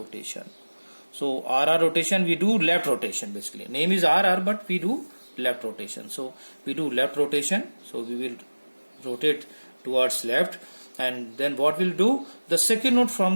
So RR rotation, we do left rotation basically. Name is RR, but we do left rotation. So we do left rotation. So we will rotate towards left, and then what we'll do? The second node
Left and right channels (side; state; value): both; inverted; correlation -1.00